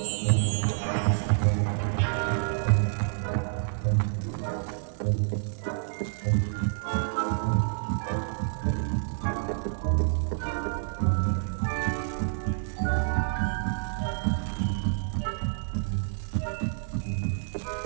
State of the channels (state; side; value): silent; left; digital silence